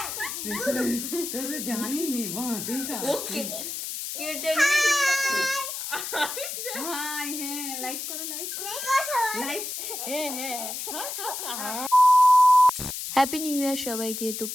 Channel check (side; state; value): left; noise; hiss, 6 dB below the sound